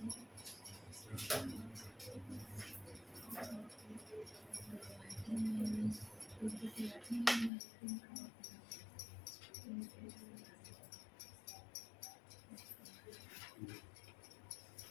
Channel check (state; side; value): drops out; right; at 7.5 s